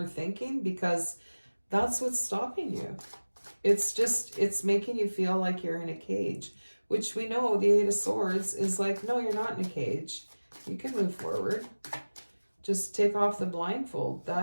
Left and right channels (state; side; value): inverted; both; correlation -1.00